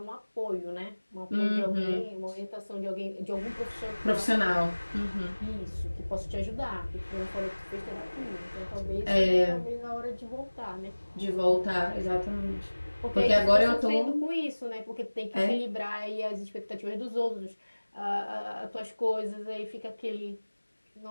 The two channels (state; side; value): inverted; both; correlation -1.00